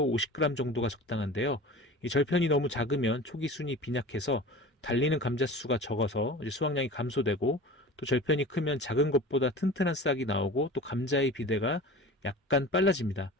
50g 정도가 적당한데요. 이 절편이 너무 작으면 초기 순이 빈약해서 달리는 감자 수가 적어서 수확량이 감소되고, 또 절편이 크면 작은 것보다 튼튼한 싹이 나오고 또 감자의 비대가 약간 빨라집니다.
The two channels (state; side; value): normal; both; correlation 0.37